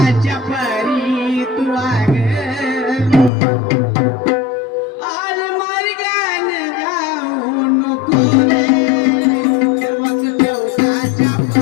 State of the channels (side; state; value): right; drops out; at 3.3 s